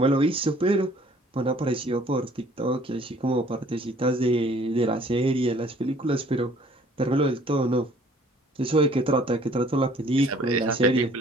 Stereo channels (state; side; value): normal; both; correlation 0.56